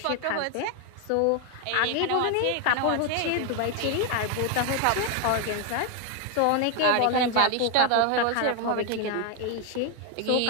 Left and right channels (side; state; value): both; different; correlation 0.01